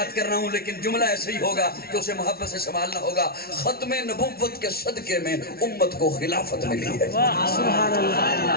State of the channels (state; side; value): late; right; 0.44 ms